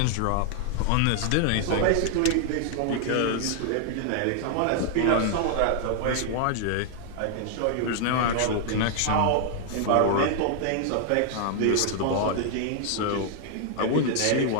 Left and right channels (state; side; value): different; both; correlation 0.00